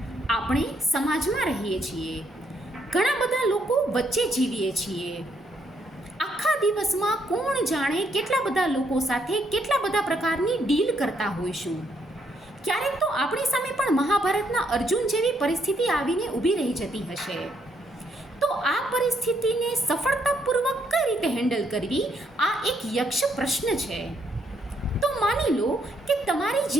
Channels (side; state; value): both; normal; correlation 0.73